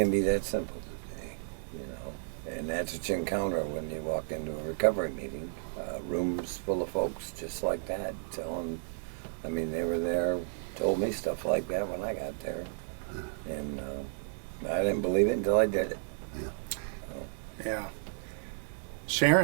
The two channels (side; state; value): left; silent; digital silence